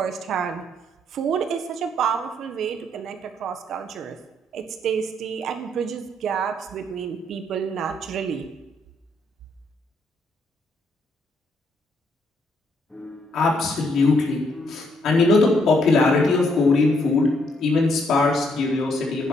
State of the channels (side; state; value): both; normal; correlation 0.72